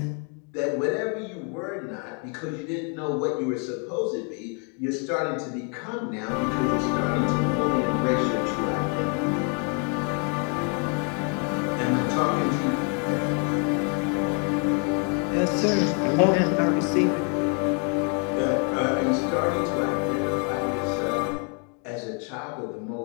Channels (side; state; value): right; quieter; 38.5 dB